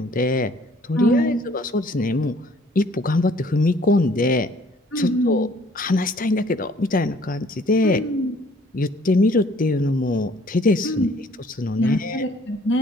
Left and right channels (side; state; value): both; normal; correlation 0.58